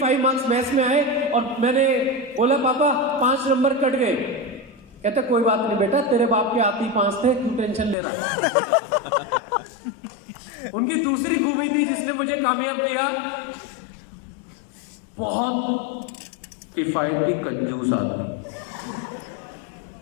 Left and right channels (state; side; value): drops out; right; at 8.0 s